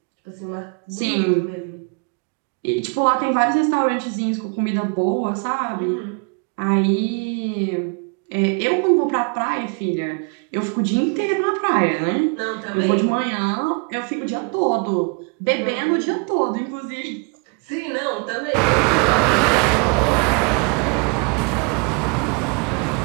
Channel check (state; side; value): quieter; left; 34.3 dB